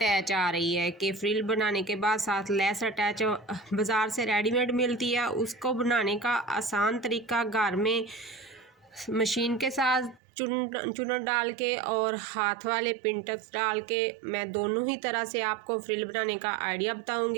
आ रही है कि फ्रिल बनाने के बाद साथ लेस अटैच बाज़ार से रेडीमेड मिलती है। उसको बनाने का आसान तरीका घर में मशीन के साथ चुनट डाल के और हाथ वाले पिंटक्स डाल के मैं दोनों ही तरह से आपको फ्रिल बनाने का आइडिया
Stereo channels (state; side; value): drops out; left; at 10.2 s